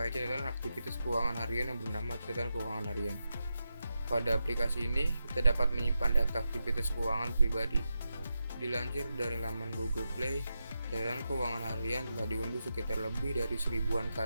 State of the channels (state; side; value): inverted; both; correlation -0.89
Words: catatan aktivitas keuangan harian yang bernama catatan keuangan harian. Pada aplikasi ini, kita dapat menyimpan data aktivitas keuangan pribadi. Dilansir dari laman Google Play, catatan keuangan harian telah diunduh sekitar lebih dari 1000-an